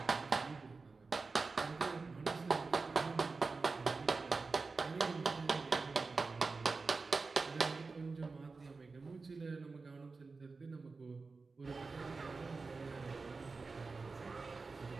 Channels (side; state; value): left; quieter; 4.1 dB